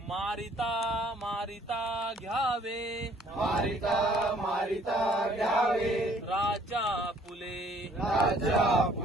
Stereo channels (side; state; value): both; normal; correlation 0.60